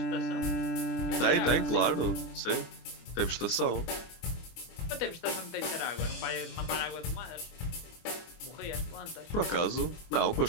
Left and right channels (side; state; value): right; late; 24 ms